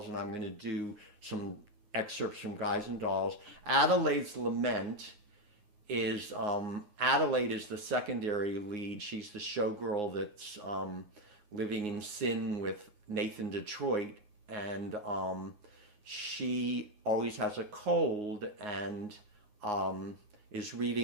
and I'm going to do some excerpts from Guys and Dolls. Adelaide's Lament is Adelaide is the secondary lead. She's the showgirl that's living in sin with Nathan Detroit, and she always has a cold and is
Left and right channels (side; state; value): left; late; 9.6 ms